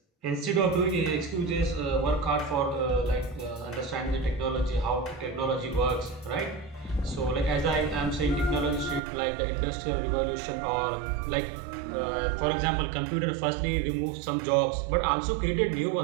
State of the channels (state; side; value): drops out; left; at 9.0 s